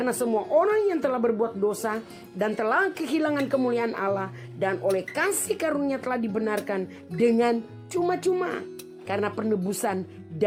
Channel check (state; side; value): identical; both; correlation 1.00